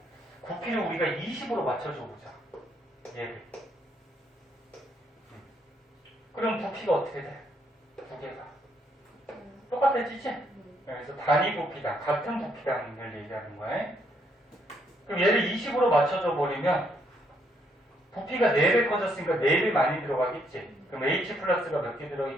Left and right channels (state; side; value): normal; both; correlation 0.72